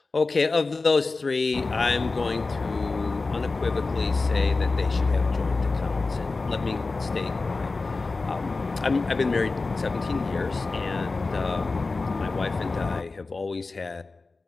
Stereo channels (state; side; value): quieter; right; 3.8 dB